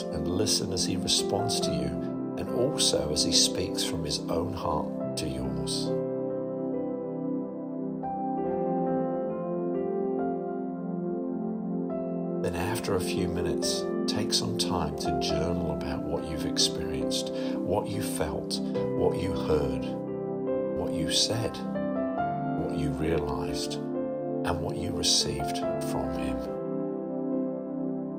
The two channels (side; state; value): both; identical; correlation 1.00